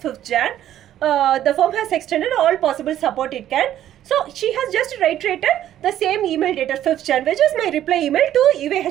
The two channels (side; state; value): left; quieter; 11.9 dB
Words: Jan. The firm has extended all possible support it can. So she has just reiterated the same email dated 5th Jan, which is my reply email to